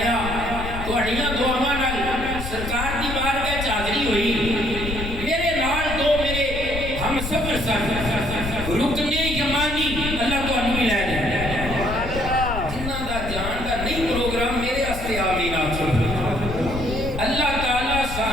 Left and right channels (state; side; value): noise; left; rumble, 6 dB below the sound